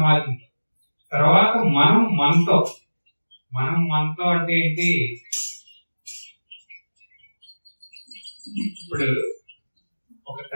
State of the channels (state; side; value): inverted; both; correlation -1.00